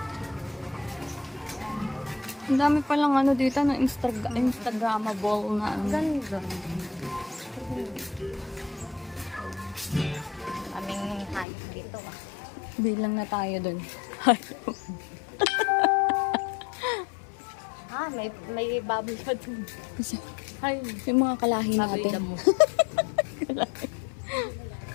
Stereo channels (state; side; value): drops out; right; at 11.5 s